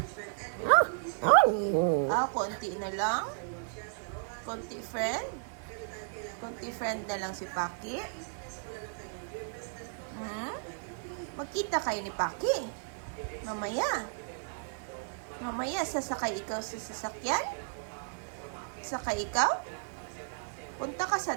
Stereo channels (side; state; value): left; silent; digital silence